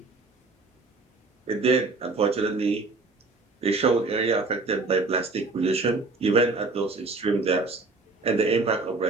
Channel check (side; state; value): left; quieter; 3.6 dB